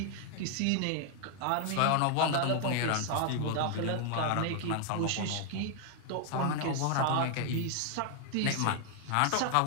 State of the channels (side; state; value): both; different; correlation 0.00